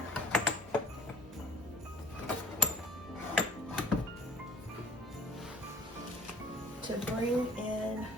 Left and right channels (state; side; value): normal; both; correlation 0.47